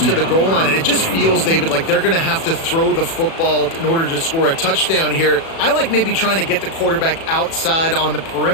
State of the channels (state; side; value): late; right; 36 ms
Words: to the goal line, and it just feels, David, like they're going to have to throw the football in order to score a touchdown here. I like maybe trying to get the quarterback outside on the